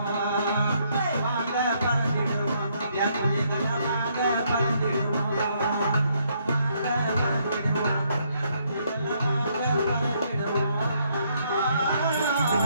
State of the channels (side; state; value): both; inverted; correlation -0.71